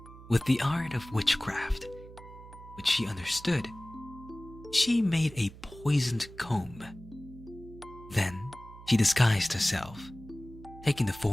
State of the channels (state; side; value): noise; right; hum, 18 dB below the sound